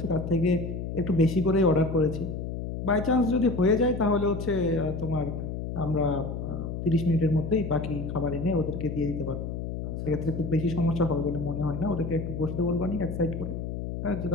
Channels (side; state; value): left; noise; hum, 5 dB below the sound